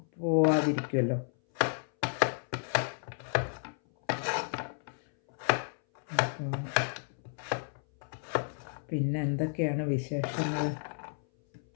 പോവാതിരിക്കുമല്ലോ. പിന്നെ എന്തൊക്കെയാണ് വിശേഷങ്ങൾ?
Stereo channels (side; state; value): right; silent; 57 dB below the other